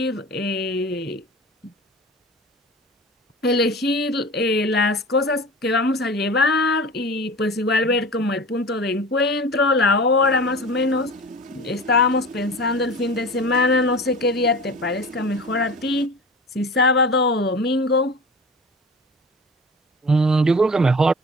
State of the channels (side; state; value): both; normal; correlation 0.36